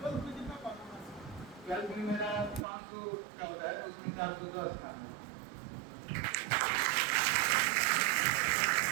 में कितना परफॉर्मेंस? 12th में मेरा 500 का होता है, उसमें 410 था।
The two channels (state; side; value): drops out; left; at 2.7 s